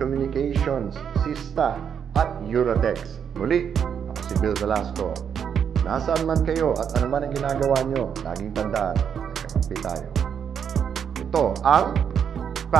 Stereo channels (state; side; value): quieter; left; 7.7 dB